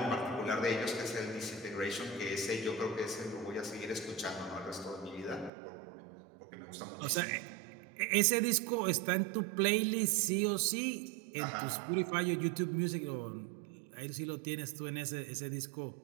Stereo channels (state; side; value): drops out; left; at 5.5 s